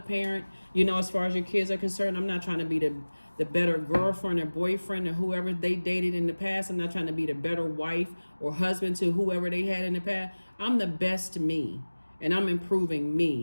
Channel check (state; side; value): inverted; both; correlation -1.00